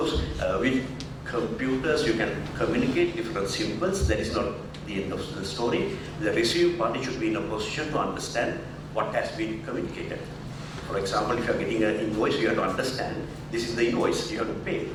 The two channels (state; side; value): identical; both; correlation 1.00